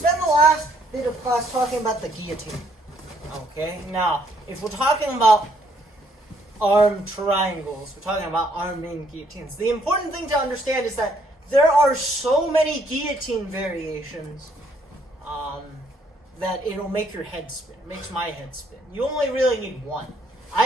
the last bit of class talking about the guillotine. Okay, now, if we're talking about arm triangles, we're talking about arm in guillotines. The important thing to understand is that there are so many guillotine variations that it'll make your head spin. It makes my head spin. You only really need one.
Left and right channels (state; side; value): normal; both; correlation 0.68